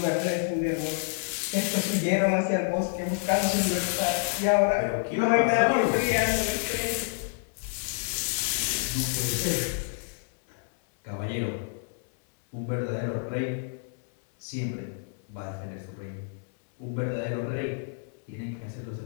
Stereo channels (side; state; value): right; silent; 59 dB below the other